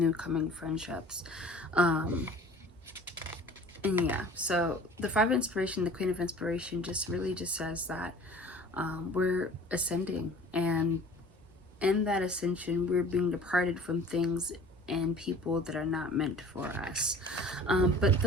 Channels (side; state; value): both; normal; correlation 0.46